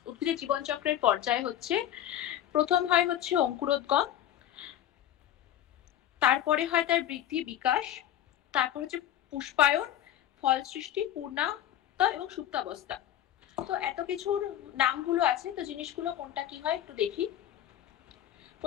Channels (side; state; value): right; quieter; 11.4 dB